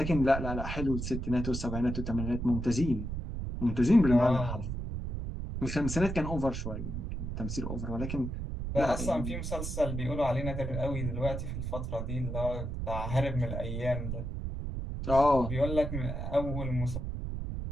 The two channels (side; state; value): right; noise; rumble, 4 dB below the sound